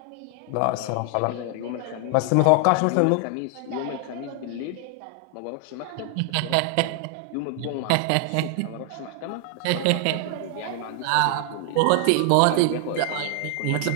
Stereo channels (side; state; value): both; different; correlation 0.00